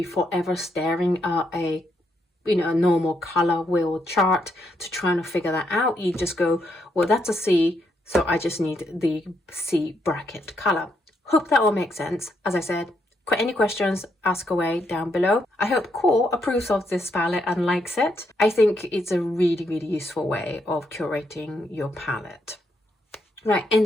forever staring at a normal color wheel chart to try to figure that out. You just go, well, that's a C, so I just need the C bracket color. Hope that all makes sense. As I said, any questions, ask away down below. I hope QoR approves of this palette and likes it. I think it's a really, really useful way of curating your palette. Right, in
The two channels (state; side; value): normal; both; correlation 0.77